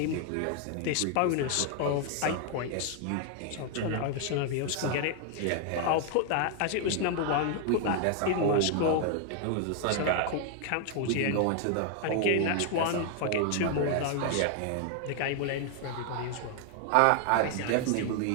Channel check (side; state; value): both; different; correlation 0.00